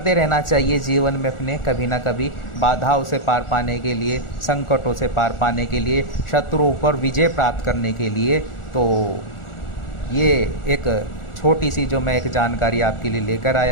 रहना चाहिए जीवन में अपने, कभी ना कभी बाधाओं से पार पाने के लिए, संकटों से पार पाने के लिए, शत्रुओं पर विजय प्राप्त करने के लिए। तो ये एक छोटी सी जो मैं एक जानकारी आपके लिए लेकर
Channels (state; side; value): late; right; 1.4 ms